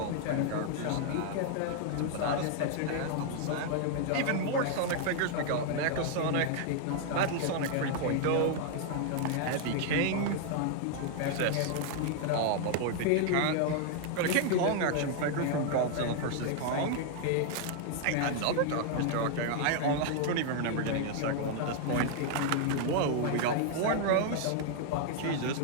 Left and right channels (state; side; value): different; both; correlation 0.00